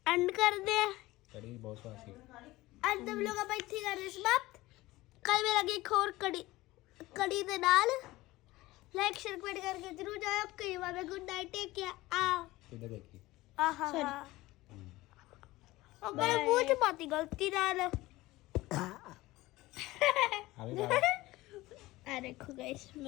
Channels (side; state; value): right; quieter; 18.8 dB